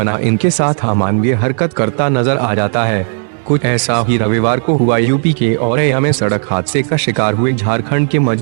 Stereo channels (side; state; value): left; silent; 60 dB below the other